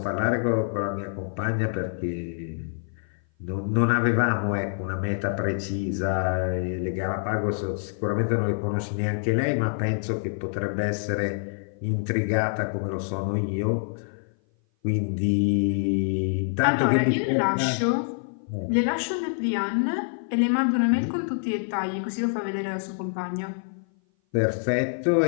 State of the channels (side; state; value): right; silent; 57 dB below the other